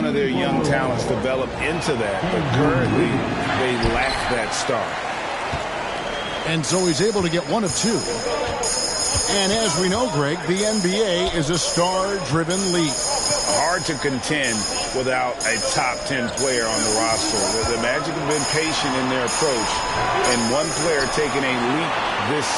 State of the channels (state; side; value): identical; both; correlation 1.00